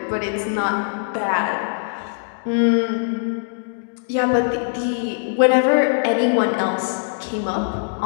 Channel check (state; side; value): silent; right; digital silence